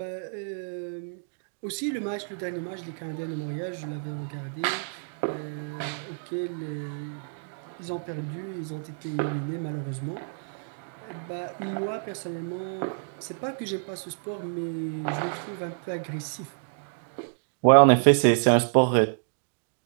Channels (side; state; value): left; silent; digital silence